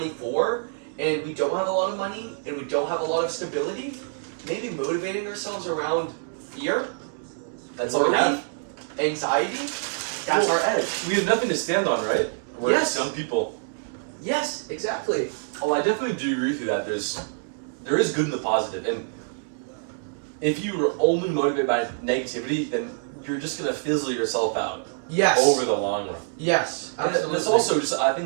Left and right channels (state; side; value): silent; left; digital silence